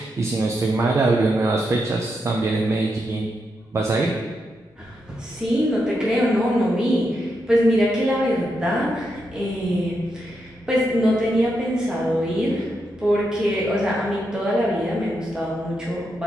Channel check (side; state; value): both; normal; correlation 0.83